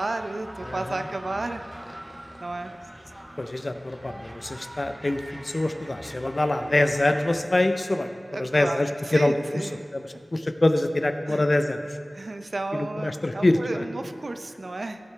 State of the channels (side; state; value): both; normal; correlation 0.98